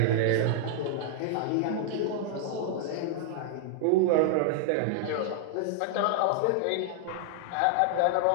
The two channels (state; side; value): different; both; correlation -0.01